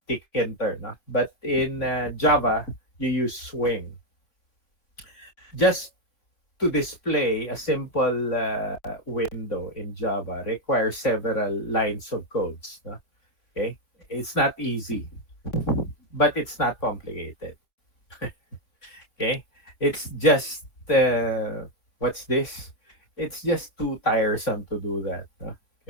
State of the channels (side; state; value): right; late; 3.4 ms